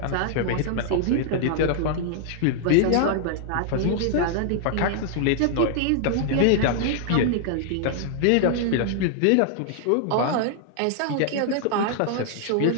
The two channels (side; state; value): both; different; correlation -0.01